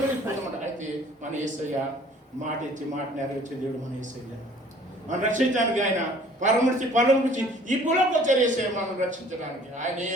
పోతామంట. అయితే మన యేసయ్య మాట ఇచ్చి మాట నెరవేర్చే దేవుడు మన యేసయ్య. మనం రక్షించడానికి ఆయన పరమృతి ఈ భూలోకి వచ్చారు యేసయ్య మనం రక్షించడానికి. ఆయనే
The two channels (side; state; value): both; normal; correlation 0.54